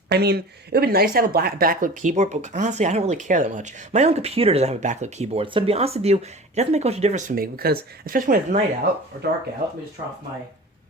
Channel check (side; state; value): both; normal; correlation 0.38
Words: I mean, it would be nice to have a backlit keyboard, but honestly, I don't really care that much. My own computer doesn't have a backlit keyboard, so to be honest with you, it doesn't make much of a difference for me, because, especially when it's night out, or dark out, let me just turn off my...